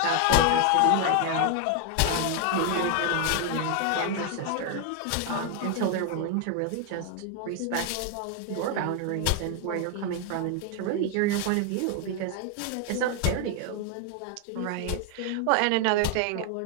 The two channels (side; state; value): both; different; correlation 0.01